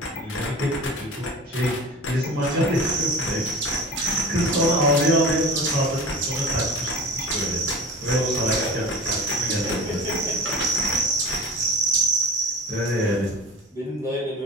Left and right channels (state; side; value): normal; both; correlation 0.35